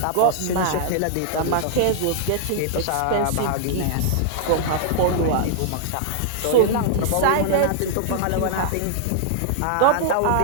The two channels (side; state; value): both; different; correlation -0.01